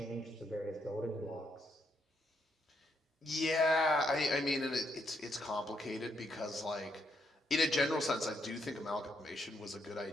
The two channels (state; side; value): normal; both; correlation 0.76